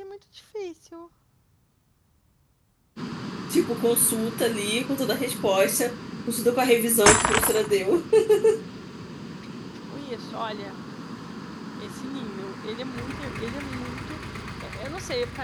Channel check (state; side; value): identical; both; correlation 1.00